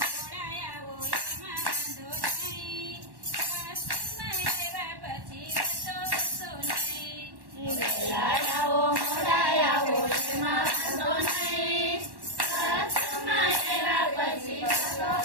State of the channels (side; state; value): left; late; 1.1 ms